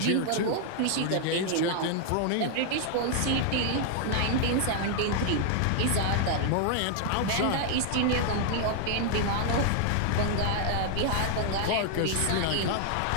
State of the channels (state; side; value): different; both; correlation 0.00